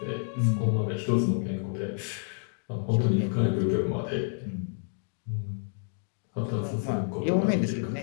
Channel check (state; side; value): silent; right; digital silence